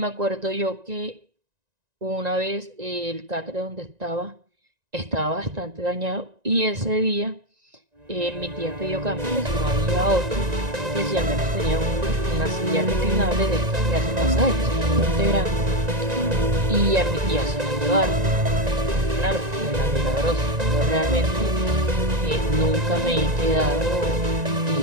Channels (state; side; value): late; left; 1.9 ms